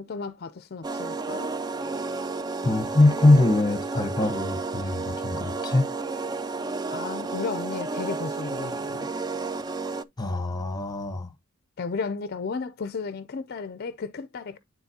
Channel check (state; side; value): normal; both; correlation 0.76